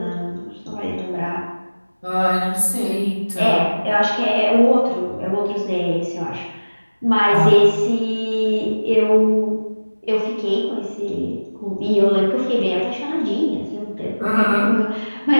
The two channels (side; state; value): both; inverted; correlation -1.00